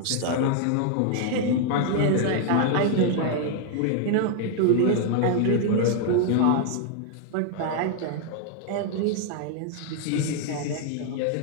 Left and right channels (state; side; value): different; both; correlation 0.00